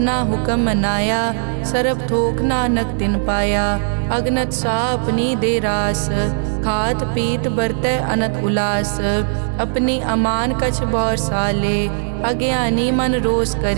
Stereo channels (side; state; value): left; silent; digital silence